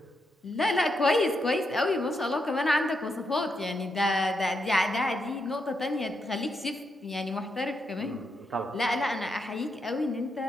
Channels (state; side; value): normal; both; correlation 0.82